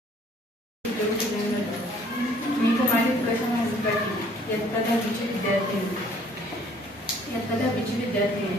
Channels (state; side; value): normal; both; correlation 0.58